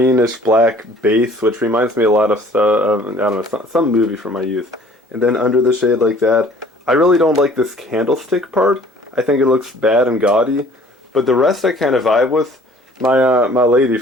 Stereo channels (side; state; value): both; normal; correlation 0.53